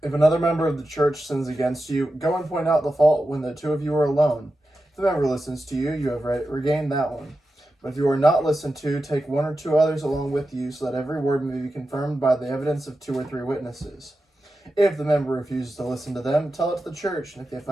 If another member of the church sins against you, go and point out the fault when the two of you are alone. If the member listens to you, you have regained that one. But if you are not listened to, take one or two others along with you, so that every word may be confirmed by the evidence of 2 or 3 witnesses. If the member refuses to listen to them, tell it to the church. And if the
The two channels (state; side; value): normal; both; correlation 0.91